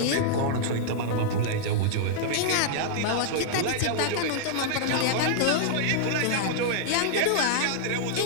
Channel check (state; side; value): different; both; correlation -0.01